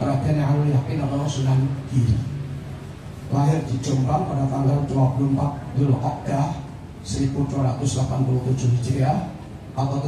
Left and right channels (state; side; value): identical; both; correlation 1.00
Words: Alul Yakin atau Sunan Giri. Lahir di Jombang pada tanggal 24 Dzulqa'dah 1287 Hijriah atau